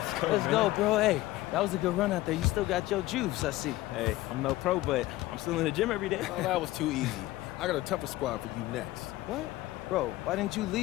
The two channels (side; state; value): right; quieter; 17.2 dB